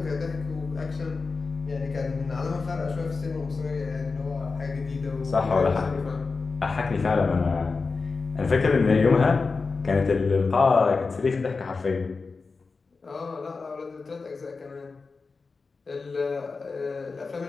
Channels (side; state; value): right; quieter; 4.3 dB